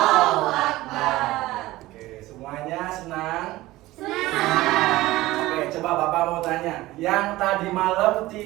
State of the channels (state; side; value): quieter; left; 17.9 dB